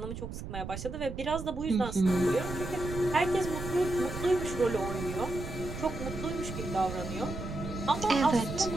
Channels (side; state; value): right; noise; rumble, 8 dB below the sound